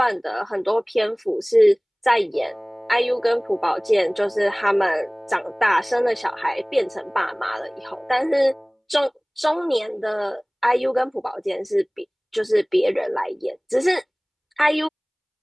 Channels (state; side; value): identical; both; correlation 1.00